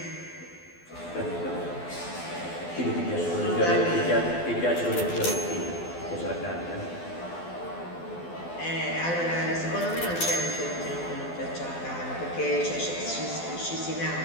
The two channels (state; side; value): late; right; 12 ms